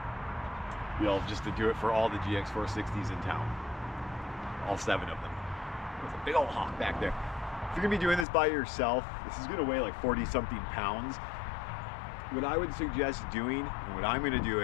You'll just to do it for all the GX460s in town, all 7 of them. There's a big old hawk back there. If you're gonna be doing this by yourself, this is gonna weigh like 40-something pounds. What I would suggest doing, and what I'm gonna do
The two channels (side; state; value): right; drops out; at 8.2 s